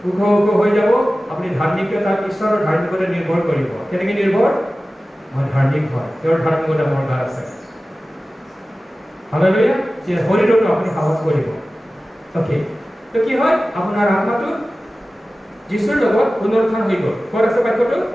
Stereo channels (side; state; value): both; normal; correlation 0.96